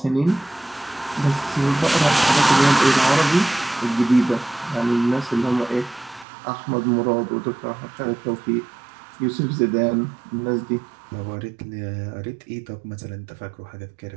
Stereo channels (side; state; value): left; drops out; at 6.2 s